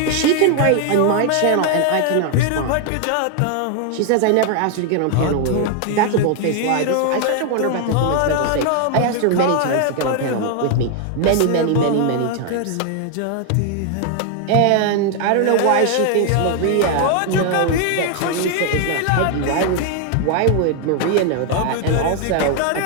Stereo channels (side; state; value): both; different; correlation 0.00